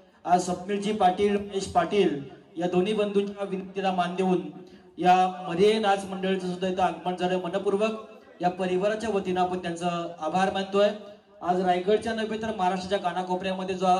आज स्वप्नीलजी पाटील, महेश पाटील या दोन्ही बंधूंच्या विनंतीला मान देऊन या मरे नाच मंडळाचं सुद्धा इथं आगमन झालं. मनपूर्वक या परिवाराच्या वतीनं आपण त्यांचं आभार मानतोय. आज रायगडच्या नव्हे तर महाराष्ट्राच्या कानाकोपऱ्यामध्ये जो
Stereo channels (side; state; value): both; identical; correlation 1.00